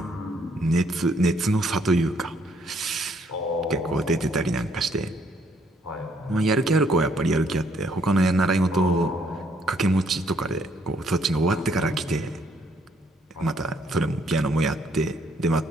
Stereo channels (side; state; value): both; normal; correlation 0.68